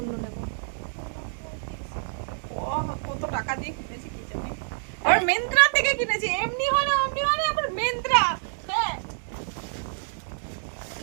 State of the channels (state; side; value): silent; left; digital silence